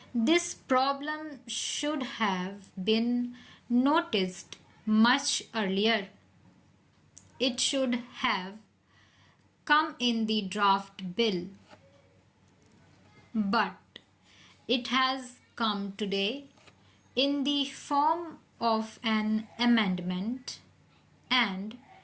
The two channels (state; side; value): identical; both; correlation 1.00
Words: This problem should have been noticed much earlier. It should have come in the draft bill, but it has come today in the form of an amendment, and